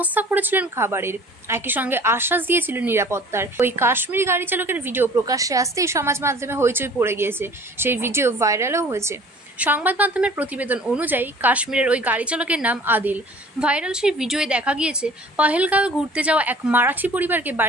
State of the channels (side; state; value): both; normal; correlation 0.49